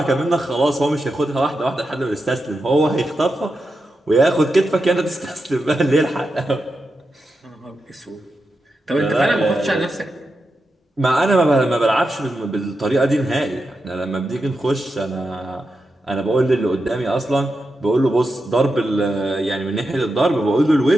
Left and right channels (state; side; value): normal; both; correlation 0.88